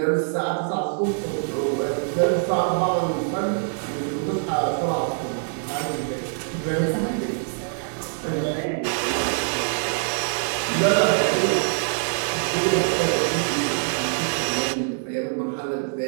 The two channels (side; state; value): left; silent; digital silence